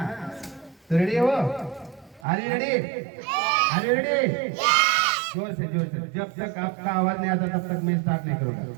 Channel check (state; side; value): drops out; left; at 2.2 s